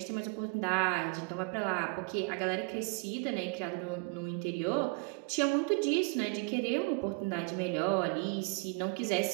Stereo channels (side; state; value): left; quieter; 32.2 dB